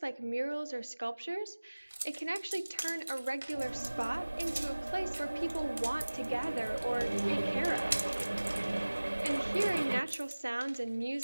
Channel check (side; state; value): both; inverted; correlation -1.00